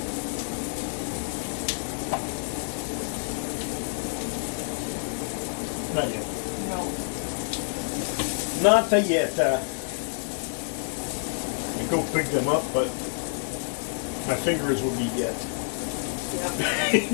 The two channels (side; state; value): right; silent; digital silence